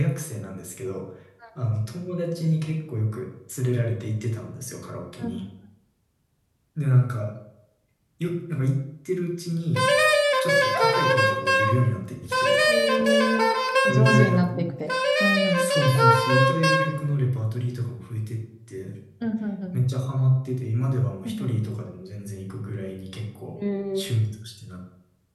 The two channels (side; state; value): both; identical; correlation 1.00